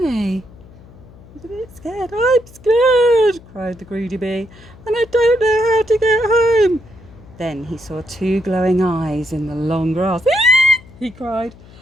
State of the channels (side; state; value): left; noise; hum, 22 dB below the sound